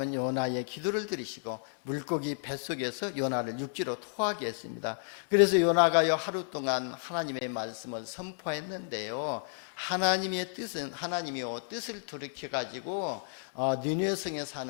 요나의 기도를 들으시고 물고기 뱃속에서 요나를 육지로 토하게 했습니다. 그래서 요나가요 하루 동안 하나님의 말씀을 선포했는데요, 하나님의 뜻은, 하나님이요 뜻을 돌이켜 가지고 니느웨 성에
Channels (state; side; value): silent; right; 56 dB below the other